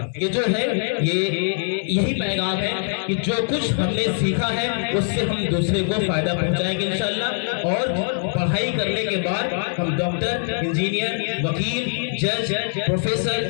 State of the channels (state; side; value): silent; right; digital silence